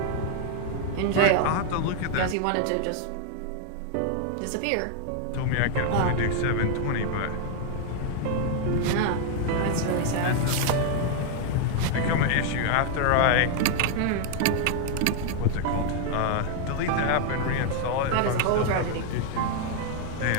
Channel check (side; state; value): both; different; correlation 0.00